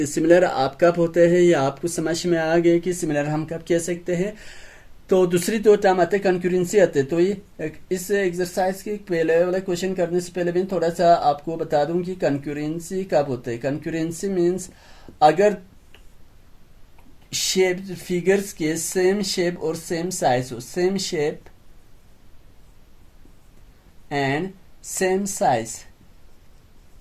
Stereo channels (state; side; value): identical; both; correlation 1.00